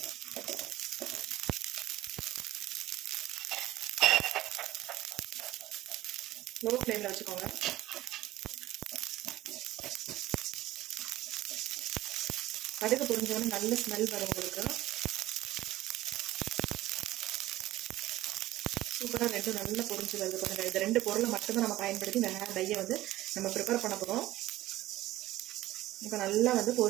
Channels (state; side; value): quieter; left; 15.8 dB